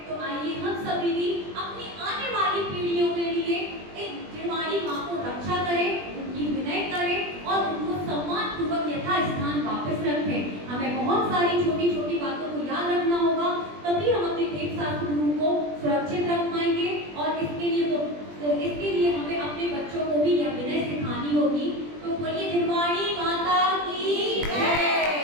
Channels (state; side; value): late; left; 20 ms